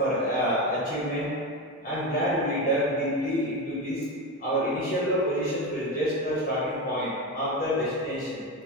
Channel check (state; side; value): normal; both; correlation 0.17